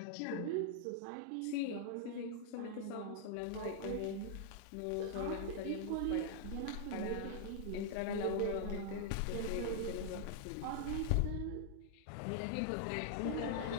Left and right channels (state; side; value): different; both; correlation -0.01